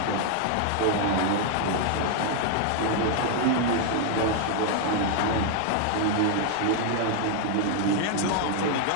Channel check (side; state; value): both; different; correlation 0.00